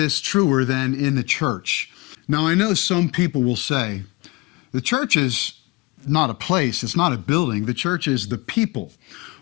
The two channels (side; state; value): right; quieter; 23.9 dB